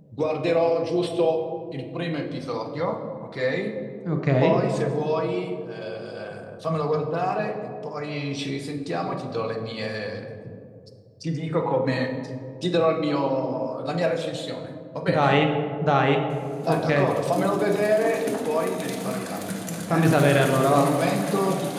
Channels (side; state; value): both; identical; correlation 1.00